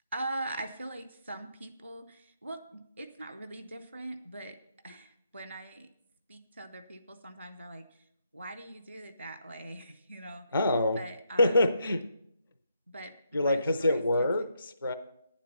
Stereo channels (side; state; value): both; inverted; correlation -0.77